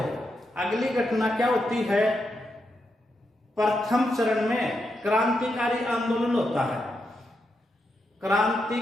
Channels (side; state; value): both; normal; correlation 0.84